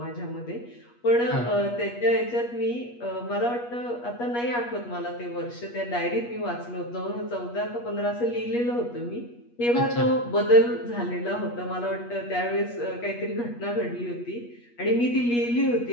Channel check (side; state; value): right; late; 8.4 ms